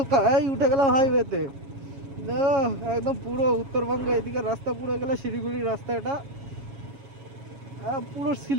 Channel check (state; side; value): late; left; 7.3 ms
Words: এই উঠে গেলাম হাইওয়েতে, একদম পুরো উত্তরবঙ্গে এদিকে রাস্তা, পুরো গেলে শিলিগুড়ির রাস্তা, এটা পুরো